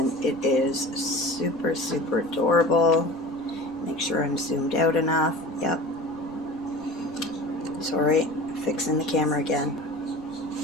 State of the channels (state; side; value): noise; left; rumble, 26 dB below the sound